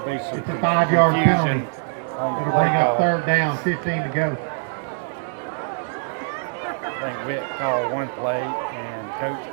be some confusion on the play call. Third down, 15 to go. I think Witt called one play, and the coach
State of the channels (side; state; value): left; silent; digital silence